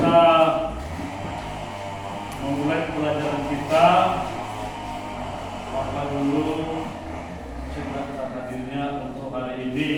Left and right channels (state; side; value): identical; both; correlation 1.00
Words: memulai pelajaran kita, maka dulu cerita hadirnya untuk hari